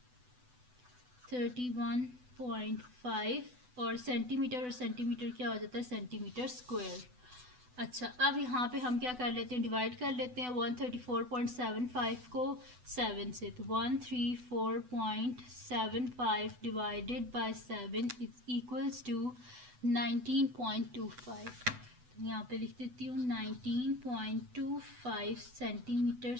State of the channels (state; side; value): late; left; 8.0 ms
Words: और सेंटीमीटर क्या हो जाता है, सेंटीमीटर स्क्वायर। अच्छा, अब यहाँ पे हम क्या कर लेते हैं, डिवाइड कर लेते हैं 134.75 को 7 से, तो 134.75 divided by 7 is equals to 19.25। तो यहाँ पे लिख देती हूँ 19.25 सेंटीमीटर